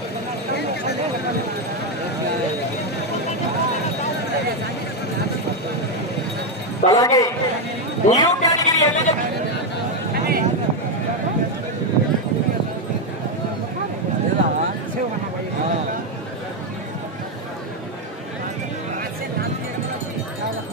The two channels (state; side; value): normal; both; correlation 0.05